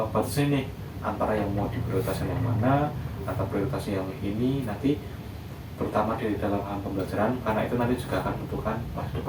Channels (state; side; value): identical; both; correlation 1.00